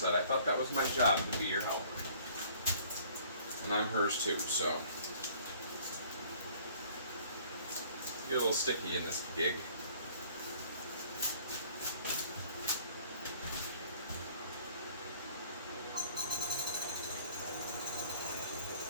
I thought that was my job to be your helper. And I'm hers too, so. Get a little sticky in this gig.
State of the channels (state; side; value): inverted; both; correlation -0.55